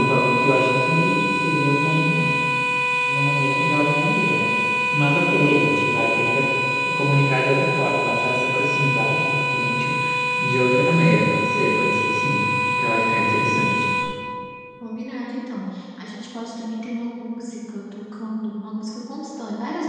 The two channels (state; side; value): identical; both; correlation 1.00